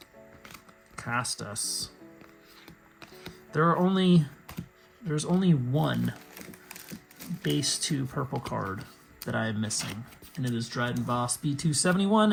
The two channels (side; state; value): both; identical; correlation 1.00